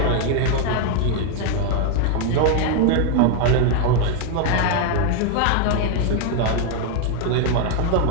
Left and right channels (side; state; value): both; different; correlation 0.01